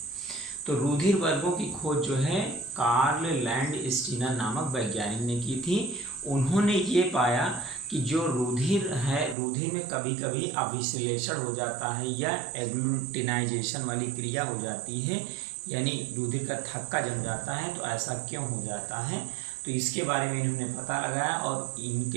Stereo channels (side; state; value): left; drops out; at 9.3 s